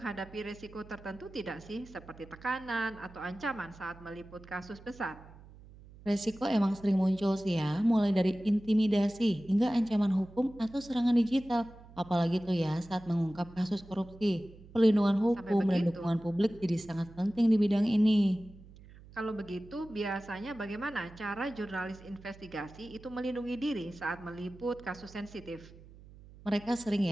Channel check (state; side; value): noise; right; hum, 20 dB below the sound